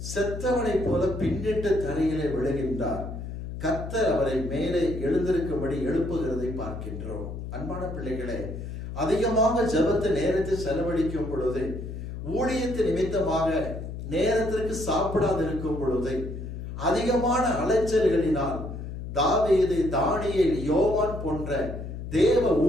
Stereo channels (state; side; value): noise; left; hum, 8 dB below the sound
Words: செத்தவனை போல பின்னிட்டு தரையிலே விழுகின்றார், கர்த்தர் அவரை மேலே எழுந்திருக்கும்படி எழுப்புகிறதை பார்க்கின்றோம். அன்பான பிள்ளைகளே, அதிகமாக ஜெபத்தை நேரத்தை செலவழிக்கும் பொழுது, ஊழியத்து நிமித்தமாக நேரத்திற்கு சாப்பிடாது இருக்கும் பொழுது, அதிகமான அலைச்சல்களினால் தாவீது, தானியேல், யோவான் போன்ற தேவ